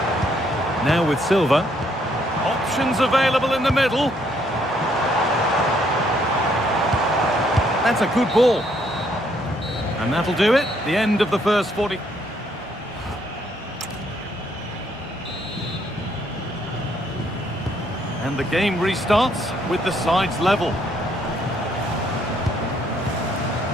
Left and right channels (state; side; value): normal; both; correlation 0.70